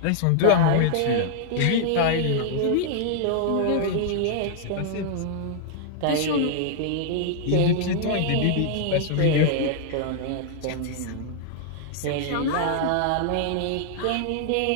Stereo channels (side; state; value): both; different; correlation -0.01